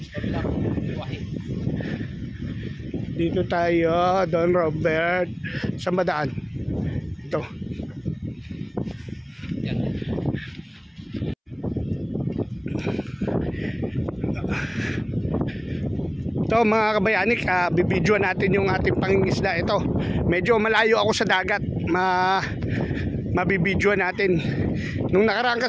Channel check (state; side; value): identical; both; correlation 1.00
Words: Dito tayo, Don Robert. Saan ba daan? Ito. Ito mga kabayanik, bibidyoan natin yung ating pangingisda. Ito, medyo malayo ako sa dagat. Mabibidyoan natin. Nung nakaraan